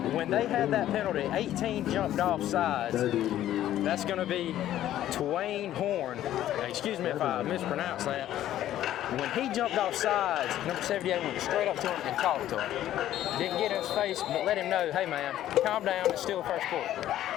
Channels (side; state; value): right; quieter; 12.6 dB